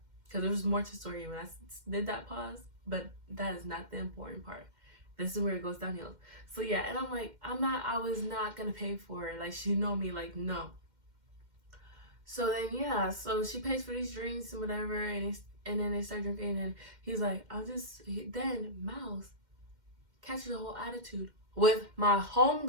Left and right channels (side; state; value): left; late; 2.1 ms